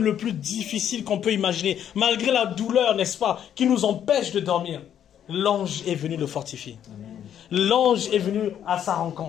le plus difficile qu'on peut imaginer, malgré la douleur, n'est-ce pas, qui nous empêche de dormir, l'ange est venu le fortifier. L'ange est venu à sa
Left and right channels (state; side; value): quieter; right; 9.7 dB